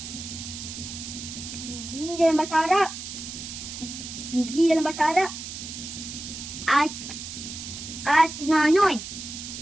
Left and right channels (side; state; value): right; noise; hiss, 9 dB below the sound